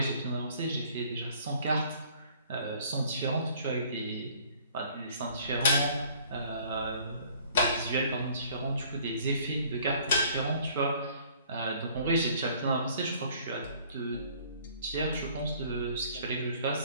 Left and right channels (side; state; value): both; inverted; correlation -0.56